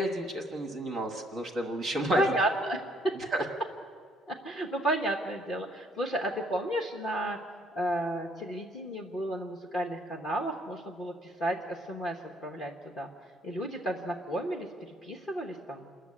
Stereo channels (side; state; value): both; normal; correlation 0.65